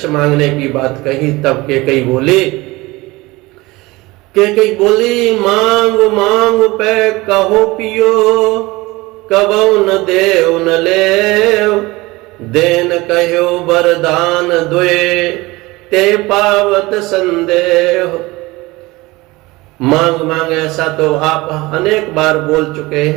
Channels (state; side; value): quieter; left; 21.5 dB